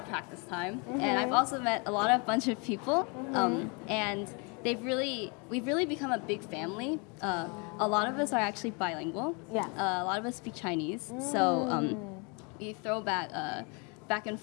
practice time, and I've also met a bunch of people, and we've really become a big family. A lot of us are actually bilingual. Yeah. A lot of us speak Chinese, so we throw back and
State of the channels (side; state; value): right; quieter; 32.5 dB